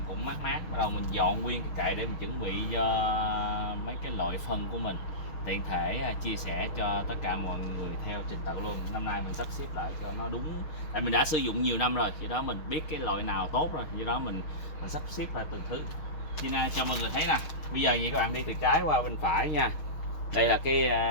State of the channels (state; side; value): late; right; 6.3 ms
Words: cũng mát mát, bắt đầu mình dọn nguyên cái kệ để mình chuẩn bị cho mấy cái loại phân của mình, tiện thể chia sẻ cho tất cả mọi người theo trình tự luôn. Năm nay mình sắp xếp lại cho nó đúng, tại mình đã sử dụng nhiều năm rồi, vì đó mình biết cái loại nào tốt rồi, vì đó mình sắp xếp lại từng thứ. Cho mọi người thấy nè. Bây giờ vậy các bạn đi từ trái qua bên phải nha. Đây là